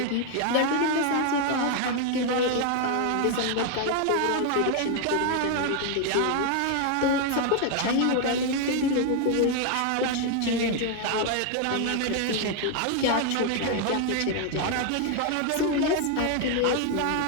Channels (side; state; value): both; different; correlation 0.00